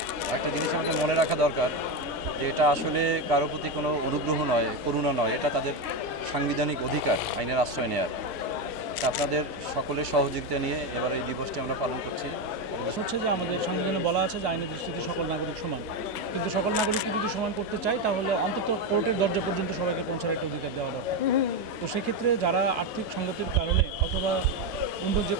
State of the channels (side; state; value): both; normal; correlation 0.12